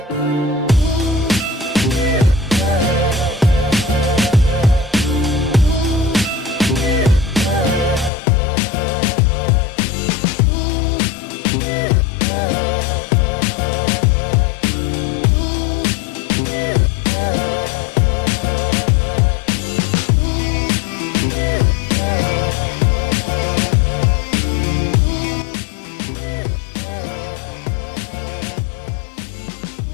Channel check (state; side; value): drops out; right; at 8.1 s